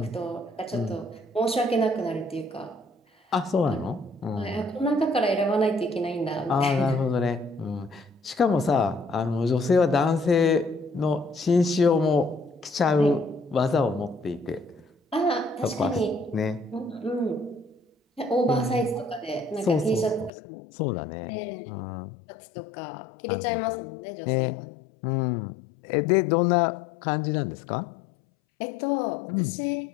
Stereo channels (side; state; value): right; drops out; at 20.3 s